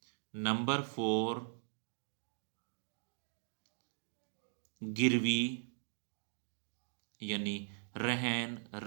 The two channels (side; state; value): left; silent; digital silence